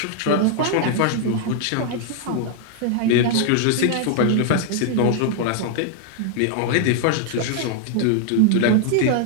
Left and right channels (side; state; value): both; different; correlation 0.00